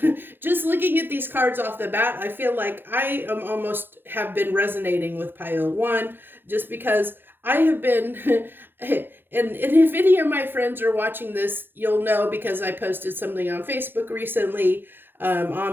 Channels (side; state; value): left; late; 0.10 ms